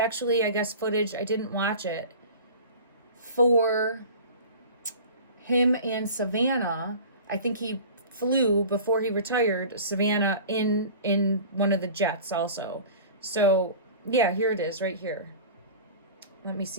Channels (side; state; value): both; inverted; correlation -0.39